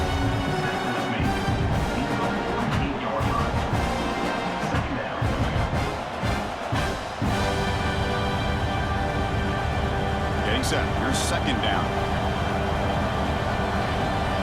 Set. Here's second down.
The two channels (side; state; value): both; identical; correlation 1.00